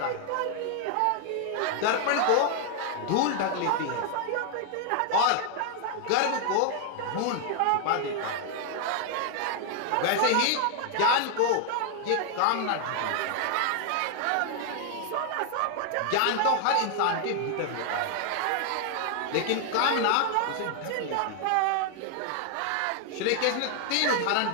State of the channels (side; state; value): both; different; correlation 0.00